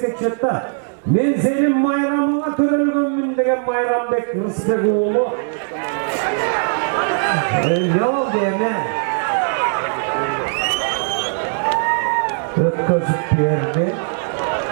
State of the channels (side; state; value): left; silent; 65 dB below the other